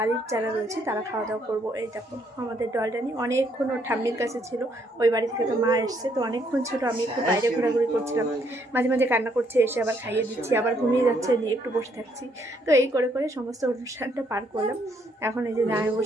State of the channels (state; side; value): normal; both; correlation 0.70